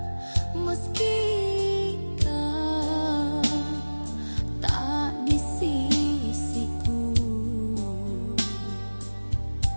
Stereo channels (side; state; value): both; inverted; correlation -1.00